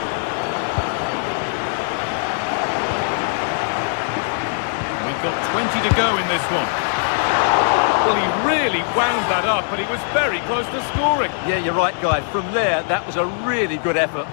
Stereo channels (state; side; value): silent; right; digital silence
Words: We've got 20 to go in this one. Well, he really wound that up, but he was very close to scoring. Yeah, you're right, Guy. From there, that was a really good effort.